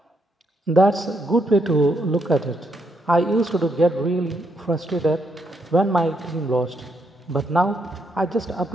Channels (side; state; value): both; normal; correlation 0.77